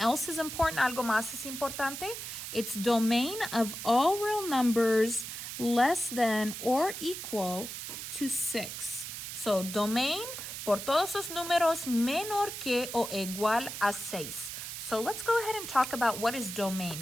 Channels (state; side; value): noise; right; hiss, 7 dB below the sound